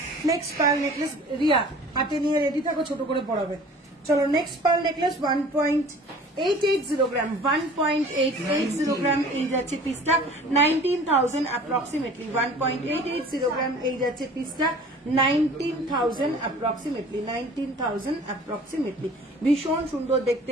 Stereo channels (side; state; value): both; normal; correlation 0.46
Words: নেক্সট পার্ল নেকলেস, রিয়া হাতে নিয়ে রেডি থাকো, ছোট করে পড়াবে। চলো next pearl necklace 1.880 gram, 1.880 gram, এই যাচ্ছে পিসটা 19,000 অ্যাপ্রক্সিমেটলি, 1.880 গ্রাম, এই যাচ্ছে পিসটা 19,000 অ্যাপ্রক্সিমেটলি, 19,000 অ্যাপ্রক্সিমেটলি। ভীষণ সুন্দর